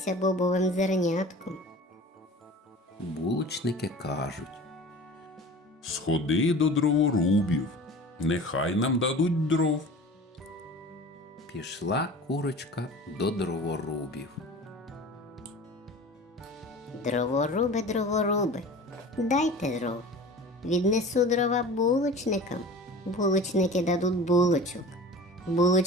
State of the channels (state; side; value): normal; both; correlation 0.39